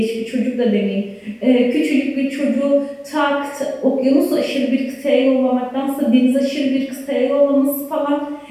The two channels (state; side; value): identical; both; correlation 1.00